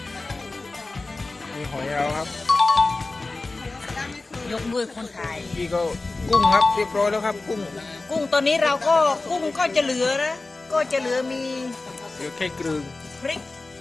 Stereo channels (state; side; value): quieter; right; 3.3 dB